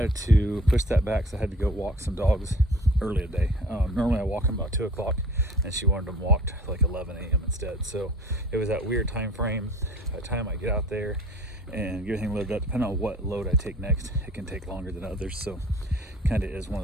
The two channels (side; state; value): both; normal; correlation 0.47